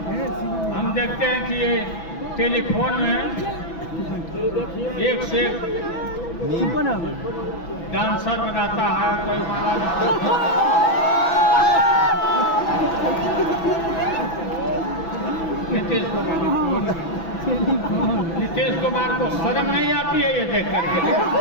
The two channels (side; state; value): right; late; 6.0 ms